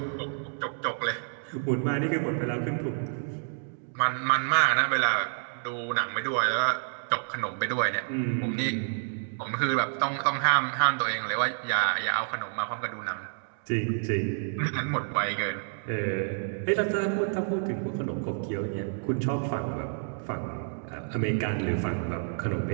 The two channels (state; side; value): silent; left; digital silence